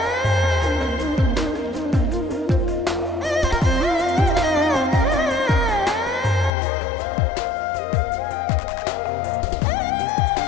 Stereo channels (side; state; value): right; drops out; at 6.5 s